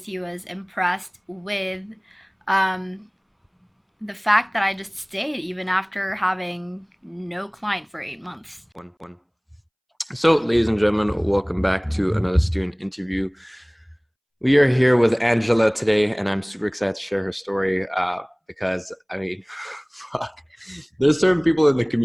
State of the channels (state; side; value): identical; both; correlation 1.00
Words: he was impressed with um, the fact that I just stayed even after having no client for 8 months. One. So, ladies and gentlemen, welcome back to another student interview. We are here with Angela today, and I'm super excited to share her story because, I mean, fuck. There's certain people in the